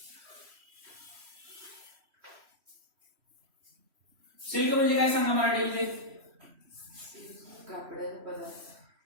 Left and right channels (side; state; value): left; late; 3.1 ms